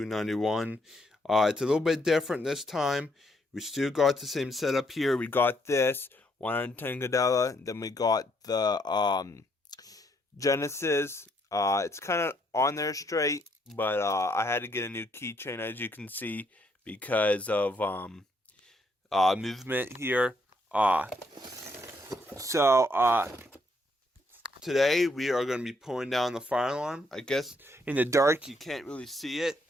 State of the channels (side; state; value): both; normal; correlation 0.72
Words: 91. It's a little bit different this time. We still got the same setup here. We got this 110 Cadella, then we got the Genesis. It's kind of on there straight, but I had to get a new keychain, as you can see, because of movement here. So today we are going to be pulling down the fire alarm. I guess in the dark you can't really see it,